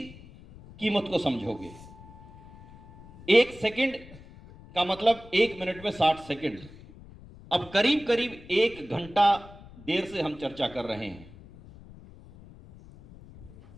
कीमत को समझोगे। 1 सेकंड का मतलब 1 मिनट में 60 सेकंड। अब करीब करीब 1 घंटा देर से हम चर्चा कर रहे हैं।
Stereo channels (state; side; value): noise; left; rumble, 20 dB below the sound